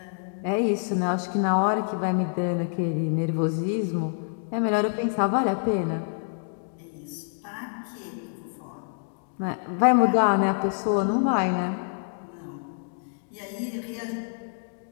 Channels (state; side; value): silent; right; digital silence